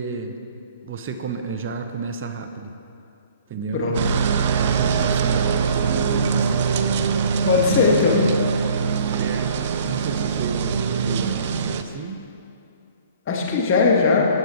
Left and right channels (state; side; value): inverted; both; correlation -0.53